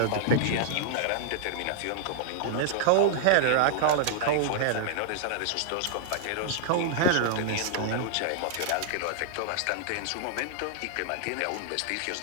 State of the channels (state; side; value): different; both; correlation -0.01